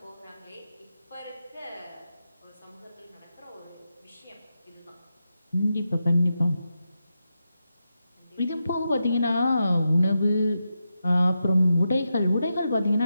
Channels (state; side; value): inverted; both; correlation -0.88